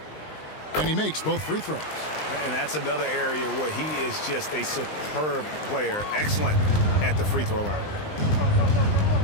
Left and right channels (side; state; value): right; late; 19 ms